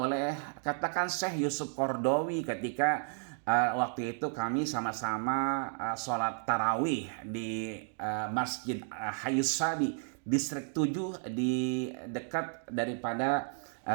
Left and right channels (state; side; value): silent; left; 56 dB below the other